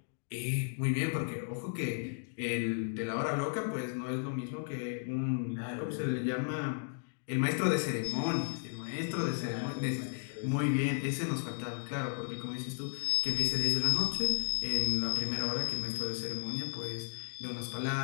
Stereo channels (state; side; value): silent; right; digital silence